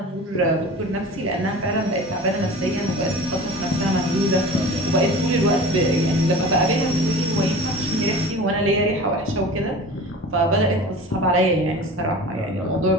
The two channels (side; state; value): both; normal; correlation 0.37